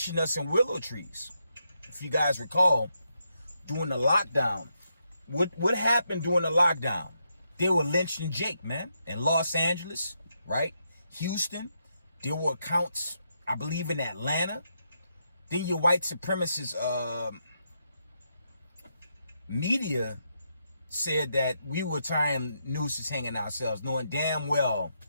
us in willow trees. If you guys recall, during the lockdown, what happened during the lockdown? They were lynching Jake, man, in Los Angeles, right? Houston. There were accounts, I believe, in Atlanta. Then your white supremacist media said that we were tying nooses hanging ourselves, knowing damn well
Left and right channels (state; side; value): inverted; both; correlation -0.81